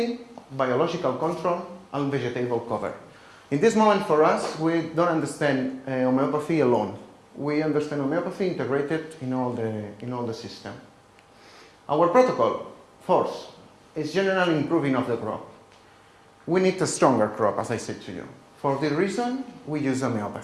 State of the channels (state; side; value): identical; both; correlation 1.00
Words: biological control, and vegetable cover. In this moment, for us, we don't understand homeopathy alone. We understand homeopathy integrated in all the system. Our protocol, fourth, is general improving of the crop. We need a stronger crop, as I said to you. For this reason, we use